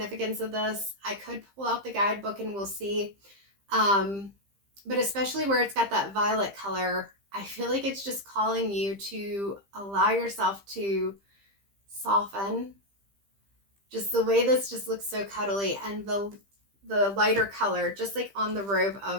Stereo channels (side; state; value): left; late; 15 ms